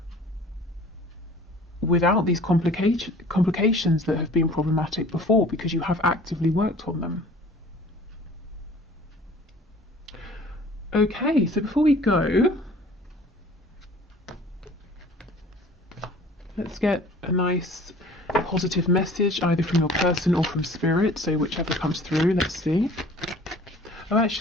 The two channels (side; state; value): both; normal; correlation 0.49